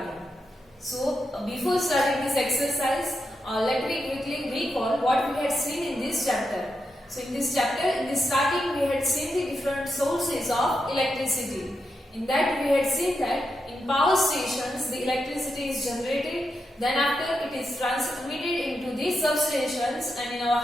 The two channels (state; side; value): normal; both; correlation 0.86